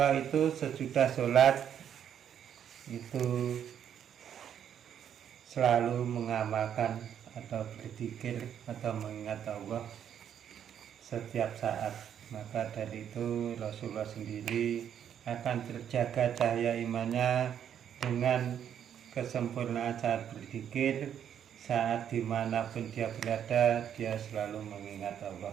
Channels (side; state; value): left; quieter; 9.1 dB